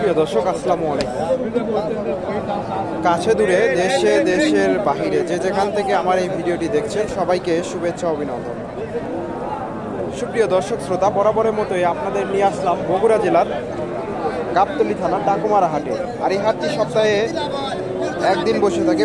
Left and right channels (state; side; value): identical; both; correlation 1.00